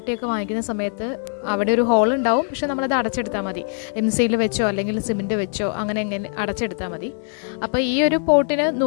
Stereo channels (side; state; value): right; silent; 61 dB below the other